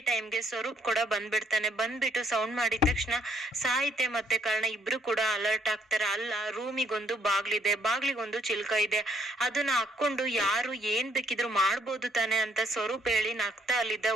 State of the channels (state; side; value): normal; both; correlation 0.68